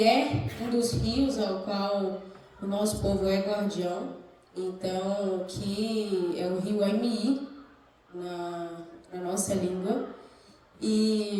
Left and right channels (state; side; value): identical; both; correlation 1.00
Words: é um dos rios ao qual o nosso povo é guardião. Então, que é o rio MI, na nossa língua.